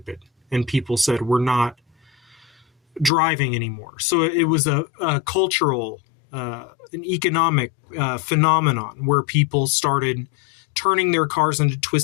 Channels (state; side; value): drops out; right; at 3.1 s